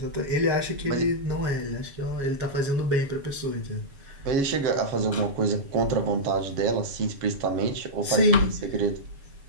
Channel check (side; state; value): left; late; 7.2 ms